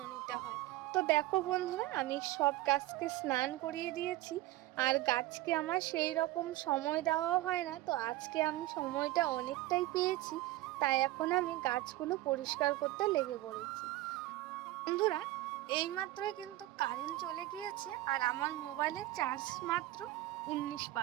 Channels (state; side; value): quieter; left; 16.9 dB